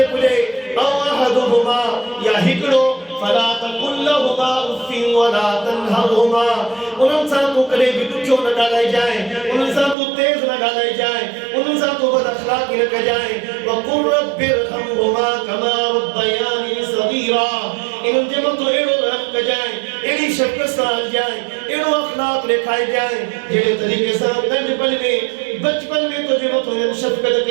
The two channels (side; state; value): left; drops out; at 10.0 s